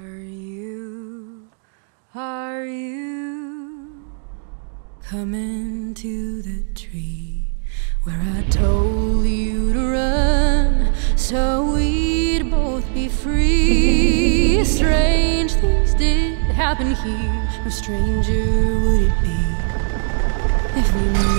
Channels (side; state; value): left; silent; digital silence